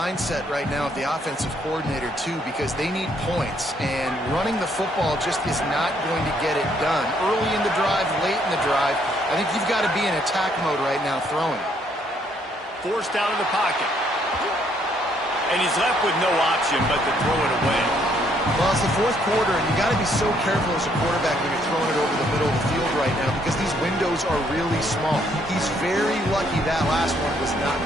right now of the offensive coordinator, too, because they need points, and running the football just is not going to get it done. Early in the drive, late in the drive, I think you've got to be in attack mode right now throwing. Forced out of the pocket. And he's left with no option but to throw it away. Well, it's the 4th quarter, and you got to be so careful as a quarterback when you're throwing it over the middle of the field right now because these windows are really small. He's very lucky that last one was not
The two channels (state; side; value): normal; both; correlation 0.69